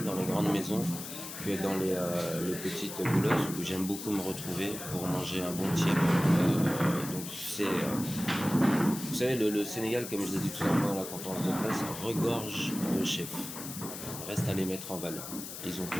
dans les grandes maisons, que dans les petites boulottes où j'aime beaucoup me retrouver pour manger un bon tiep. Donc vous savez, le Sénégal, comme je l'ai dit tout à l'heure à la conférence de presse, regorge de chefs. Reste à les mettre en valeur. Ils ont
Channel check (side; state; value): left; noise; hiss, 9 dB below the sound